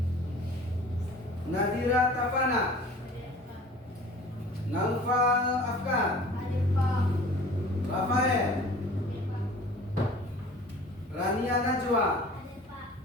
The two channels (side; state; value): both; normal; correlation 0.46